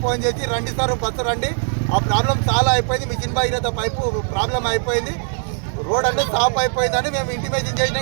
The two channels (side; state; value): left; silent; digital silence